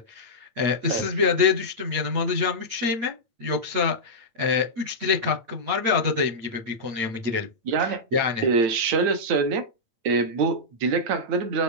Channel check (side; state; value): left; late; 8.8 ms